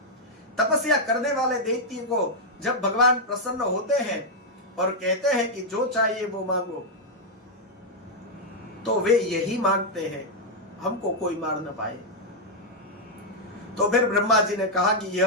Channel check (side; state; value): both; normal; correlation -0.02